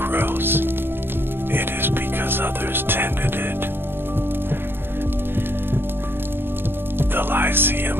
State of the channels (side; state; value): left; late; 0.10 ms